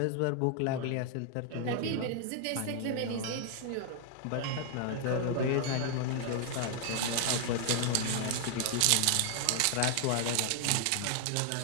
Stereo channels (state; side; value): different; both; correlation 0.00